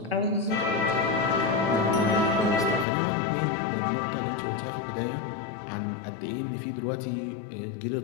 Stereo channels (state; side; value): drops out; right; at 2.9 s